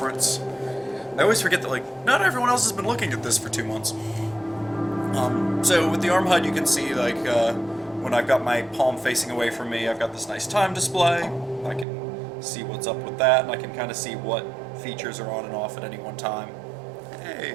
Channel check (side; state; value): left; drops out; at 11.9 s